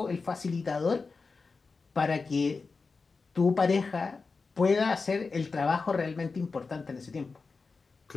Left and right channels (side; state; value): right; quieter; 4.4 dB